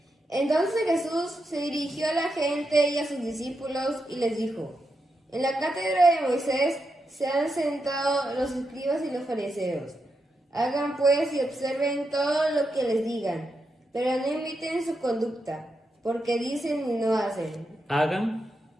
Entonces Jesús se dirigió a la gente y a sus discípulos y les dijo: En la cátedra de Moisés se han sentado los escribas y los fariseos. Hagan pues y observen todo lo que les digan, pero no imiten su conducta, porque dicen y no hacen. Hagan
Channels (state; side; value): normal; both; correlation 0.85